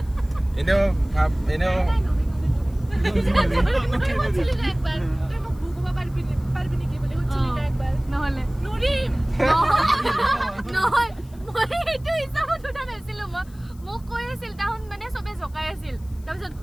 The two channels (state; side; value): noise; left; hiss, 28 dB below the sound